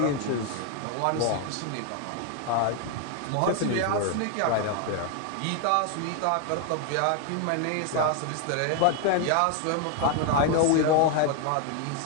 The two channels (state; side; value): different; both; correlation 0.01